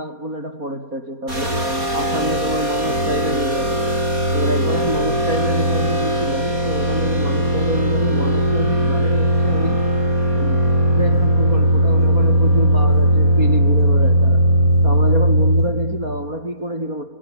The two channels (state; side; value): late; left; 4.2 ms